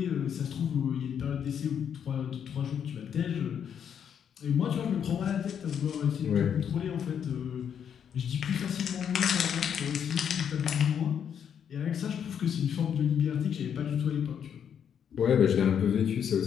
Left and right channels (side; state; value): right; quieter; 8.2 dB